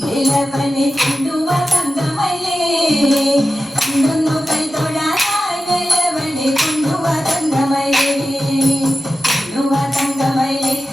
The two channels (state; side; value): normal; both; correlation 0.93